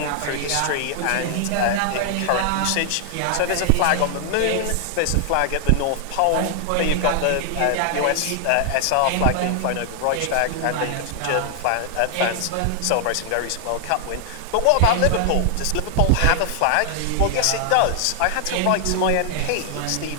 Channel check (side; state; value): both; different; correlation 0.00